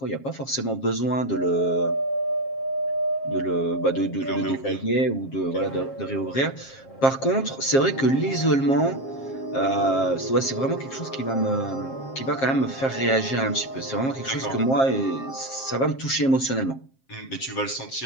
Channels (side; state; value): right; late; 7.5 ms